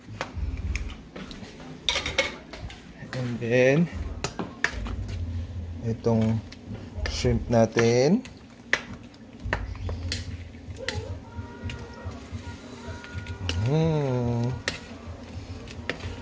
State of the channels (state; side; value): identical; both; correlation 1.00